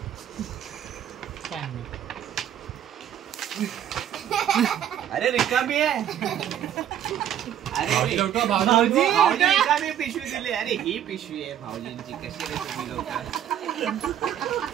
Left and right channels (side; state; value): left; quieter; 10.3 dB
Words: अरे रिकामी आहे. अरे भाऊजी रिकामी पिशवी दिली. अरे ही पिशवी आहे भाऊजींची. कशी रे तुम्ही लोक,